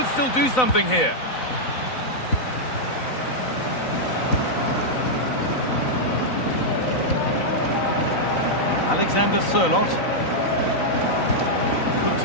still do something here. Alexander Sørloth. Could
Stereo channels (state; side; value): late; right; 3.9 ms